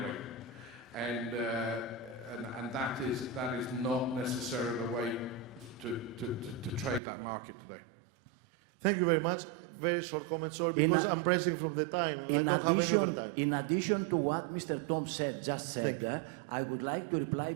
And that is not necessarily the way to trade that market today. Thank you very much. Very short comment. Sorry, because I'm pressing from the time. In addition to what Mr. Tom just said, I would like to reply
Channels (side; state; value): left; drops out; at 7.0 s